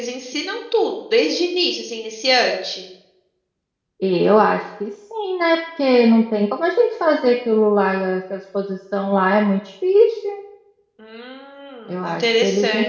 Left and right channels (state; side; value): identical; both; correlation 1.00